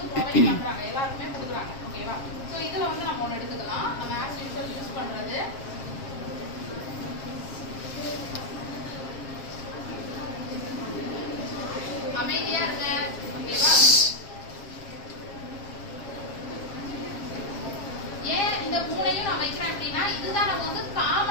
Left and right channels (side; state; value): right; late; 7.4 ms